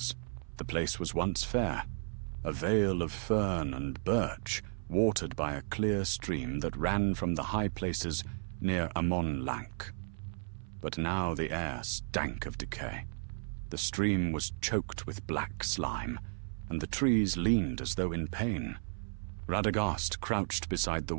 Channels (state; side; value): silent; left; 55 dB below the other